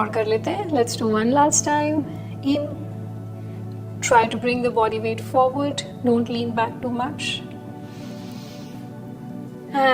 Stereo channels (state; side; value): identical; both; correlation 1.00